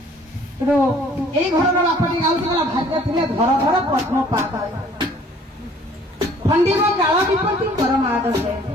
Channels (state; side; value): normal; both; correlation 0.56